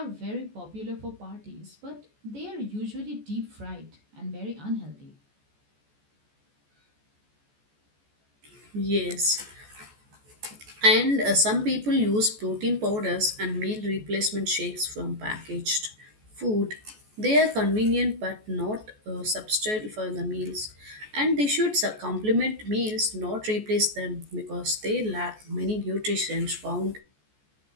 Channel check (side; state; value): left; late; 14 ms